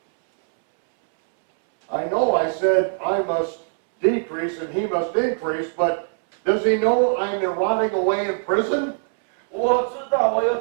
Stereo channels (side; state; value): left; silent; 64 dB below the other